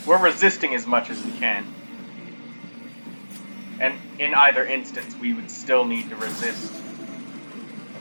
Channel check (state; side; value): inverted; both; correlation -1.00